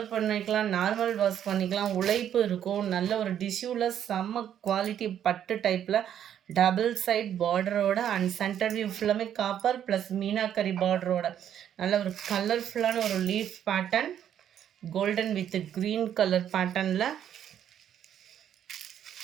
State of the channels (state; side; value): quieter; left; 9.9 dB